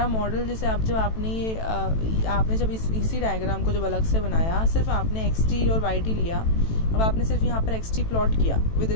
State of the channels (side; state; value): right; late; 18 ms